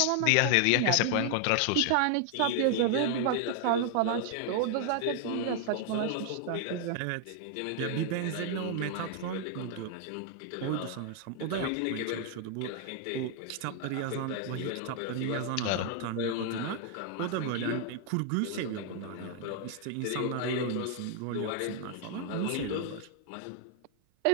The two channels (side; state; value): both; different; correlation 0.00